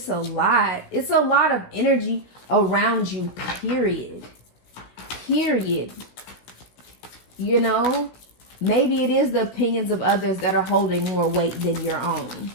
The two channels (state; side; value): late; right; 16 ms